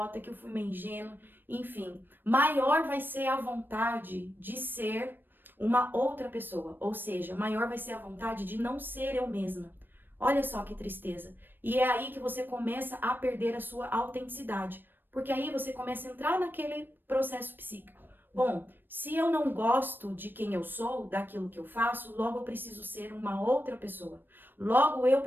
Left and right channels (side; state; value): left; late; 0.095 ms